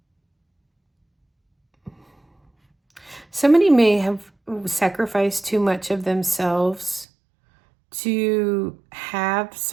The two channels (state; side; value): drops out; left; at 7.1 s